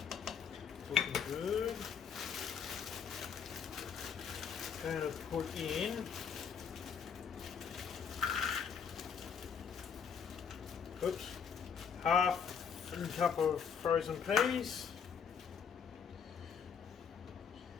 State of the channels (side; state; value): right; quieter; 6.9 dB